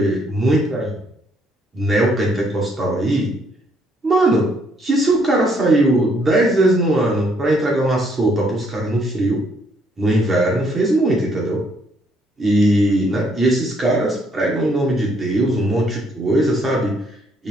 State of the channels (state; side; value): normal; both; correlation 0.69